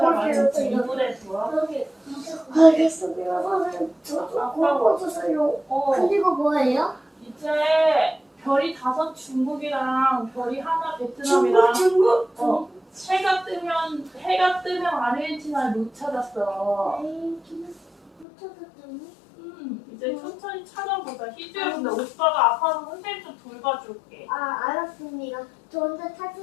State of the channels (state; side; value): drops out; right; at 18.2 s